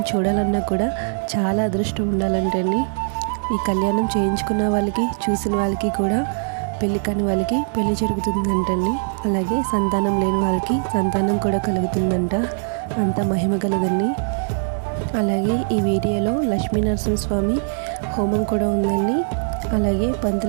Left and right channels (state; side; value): silent; left; 65 dB below the other